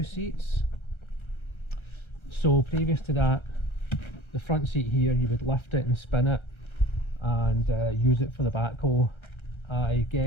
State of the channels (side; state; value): right; late; 1.3 ms